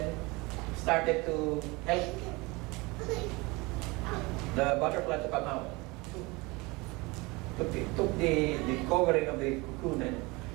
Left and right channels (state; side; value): quieter; left; 24.5 dB